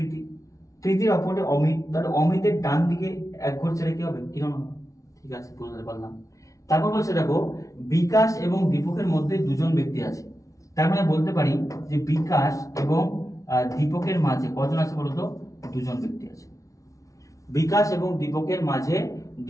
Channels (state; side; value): late; right; 0.16 ms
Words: প্রীতির অপোজিটে অমিত, তাহলে অমিতের ডান দিকে এক ঘর ছেড়ে কি হবে? কিরণ হবে। ঠিক আছে, বুঝতে পারলাম। তারপর বলছে দেখো বিকাশ এবং দীপকের মধ্যে দুজন ব্যক্তি আছে। তার মানে বলতে পারি যে বিকাশ এবং দীপকের মাঝে কজন আছে বলতো? দুজন ব্যক্তি আছে। বিকাশ এবং দীপকের মাঝে